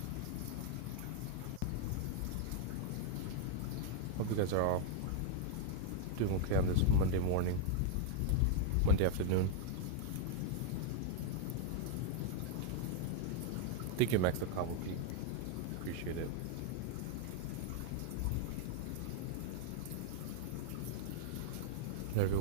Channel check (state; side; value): different; both; correlation 0.00